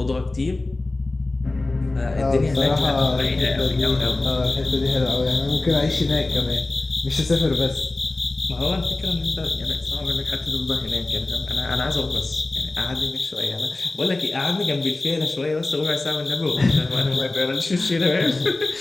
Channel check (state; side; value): quieter; right; 3.0 dB